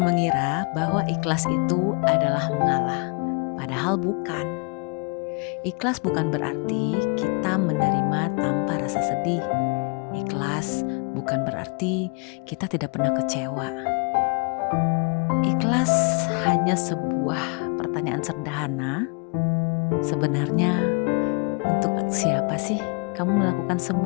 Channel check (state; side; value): quieter; right; 33.1 dB